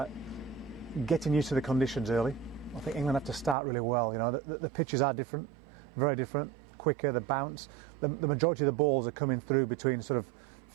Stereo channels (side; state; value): left; drops out; at 3.6 s